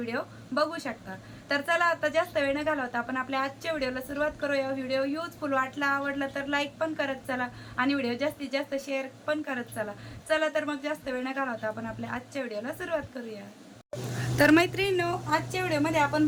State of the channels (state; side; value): identical; both; correlation 1.00